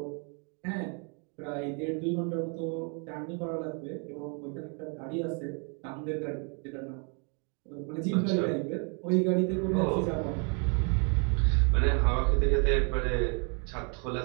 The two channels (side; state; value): left; quieter; 37.5 dB